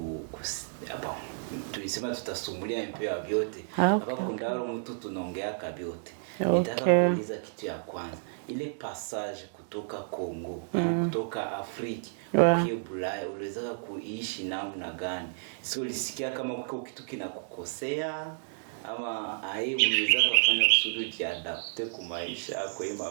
tulisema tutasumulia un peu vyote. Hapa kundaro mtu tunaongea kabyote. Nitaka kuuliza kitu ya kwanza. Ile passage kutoka Kongo, kutoka Afrika ukiye Bulaya, uliweza kuishi namna gani? Sio ulisikia kama kitu kinakukosea ama uliweza kufanya kusudi jiadapte kwa maisha kwa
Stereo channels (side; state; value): left; silent; digital silence